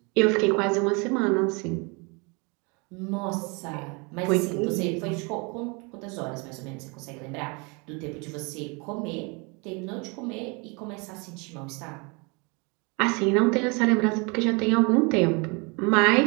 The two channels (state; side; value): quieter; left; 30.3 dB